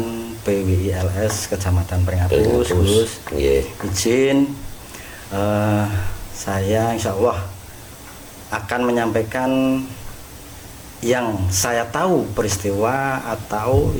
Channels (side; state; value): both; identical; correlation 1.00